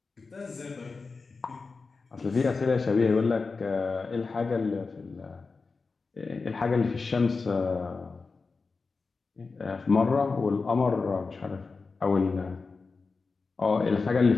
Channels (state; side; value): quieter; right; 4.3 dB